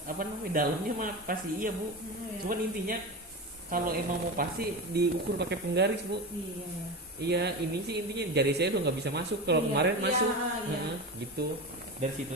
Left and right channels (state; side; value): normal; both; correlation 0.23